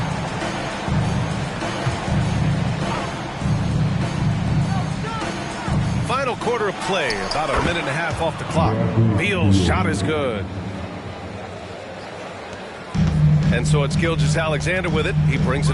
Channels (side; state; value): both; identical; correlation 1.00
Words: Final quarter of play, about a minute and a half off the clock. Beal's shot is good. And so it's Gilgeous-Alexander with it. He brings